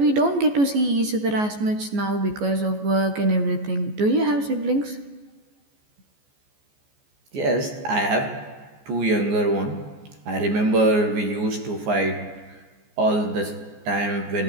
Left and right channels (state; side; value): late; left; 14 ms